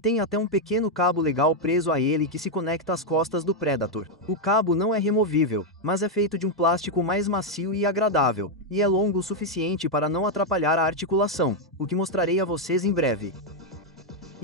até um pequeno cabo legal preso a ele que se conecta às costas do Predator. O cabo não é removível, mas é feito de um plástico mais macio e agradável, e é longo o suficiente para não atrapalhar a articulação, o que mostrarei a vocês em breve.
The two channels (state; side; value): normal; both; correlation 0.01